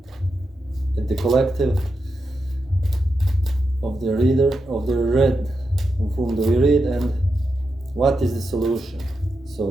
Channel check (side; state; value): both; normal; correlation 0.87